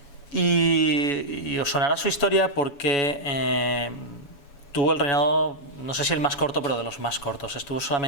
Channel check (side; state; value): right; late; 7.1 ms